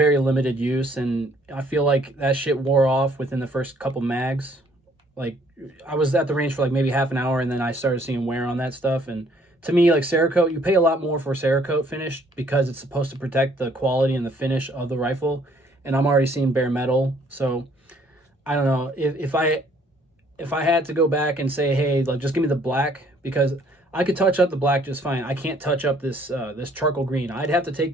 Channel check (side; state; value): both; normal; correlation 0.62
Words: limited use, and I feel like that shit wore off within the first couple mags. Like, I was at the range for like maybe half an hour, and then I started seeing wear on that stuff. And to me, like, Cerakote, you pay a lot more for Cerakote finish because it's supposed to protect the quality and the finish of the rifle, and I'm already seeing bare metal. So I don't know, if I had to go back and say, hey, like, just give me the black, because I could touch up the black just fine. I can't touch up this this charcoal green. I'd have to